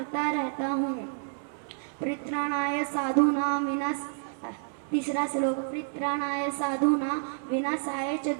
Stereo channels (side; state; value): left; silent; 58 dB below the other